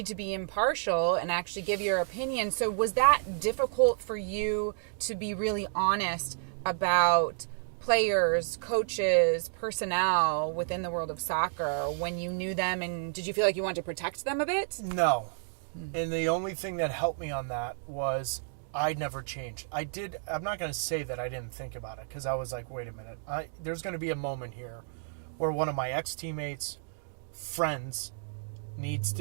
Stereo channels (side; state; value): left; silent; digital silence